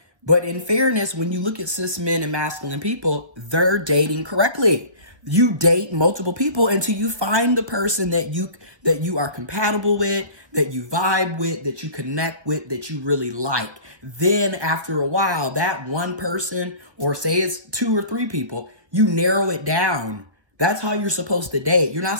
but in fairness, when you look at cis men and masculine people, they're dating correctly. You date multiple people until you find the person that you are compatible with, that you vibe with, that you connect with, that you really like. Then after a while, that one person, or say it's 2 or 3 people, you narrow it down. That's how you're supposed to date. You're not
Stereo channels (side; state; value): left; late; 1.2 ms